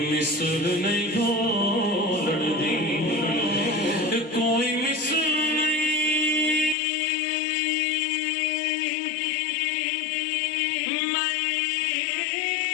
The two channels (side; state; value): right; drops out; at 6.8 s